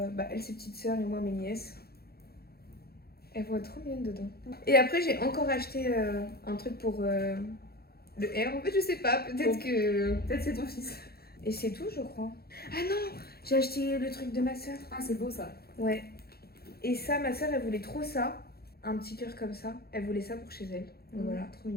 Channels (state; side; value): late; right; 0.45 ms